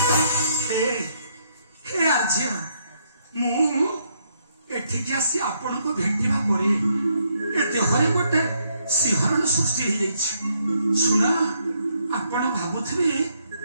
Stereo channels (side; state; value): both; inverted; correlation -0.73